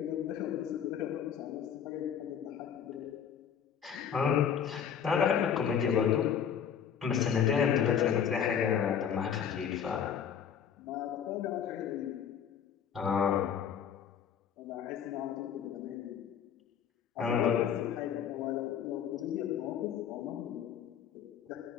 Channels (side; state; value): right; quieter; 8.2 dB